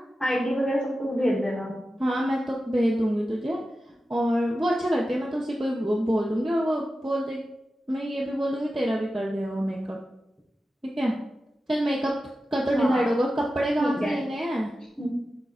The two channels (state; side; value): normal; both; correlation 0.93